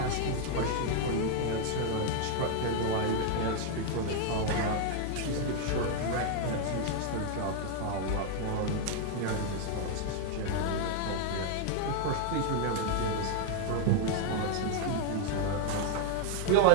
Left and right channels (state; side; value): different; both; correlation 0.00